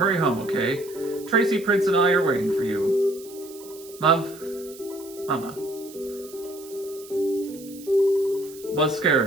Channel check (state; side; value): noise; right; hiss, 19 dB below the sound